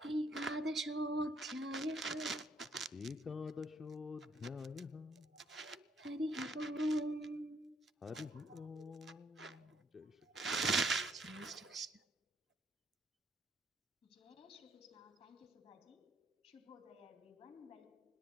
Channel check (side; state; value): both; normal; correlation 0.68